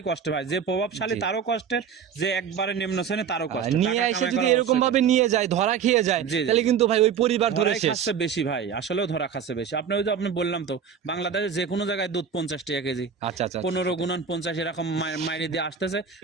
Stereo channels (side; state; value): left; quieter; 7.2 dB